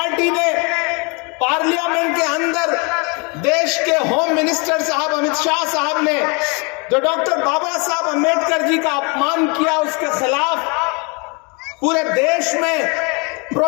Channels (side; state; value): right; quieter; 32.4 dB